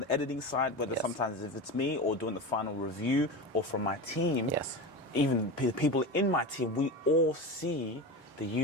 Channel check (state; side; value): normal; both; correlation 0.25